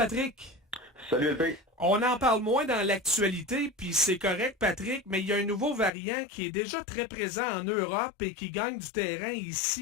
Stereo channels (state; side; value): drops out; right; at 5.9 s